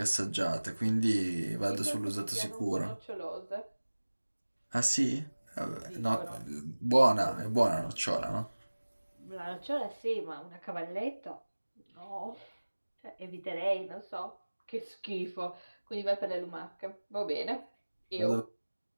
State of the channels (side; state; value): both; inverted; correlation -1.00